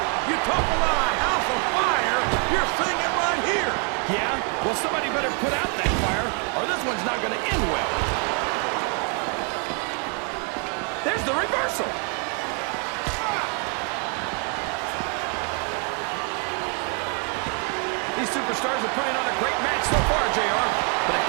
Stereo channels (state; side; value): quieter; left; 38.8 dB